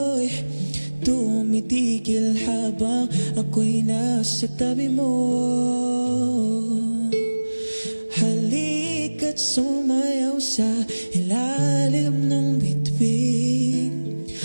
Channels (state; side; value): inverted; both; correlation -1.00